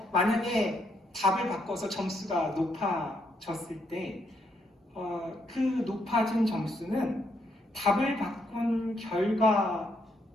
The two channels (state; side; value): normal; both; correlation 0.75